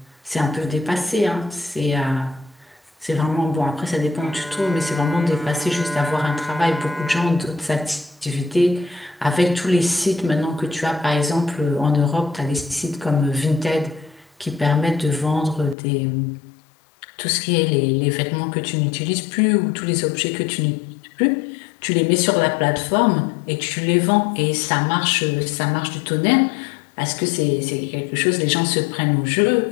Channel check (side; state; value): right; drops out; at 15.8 s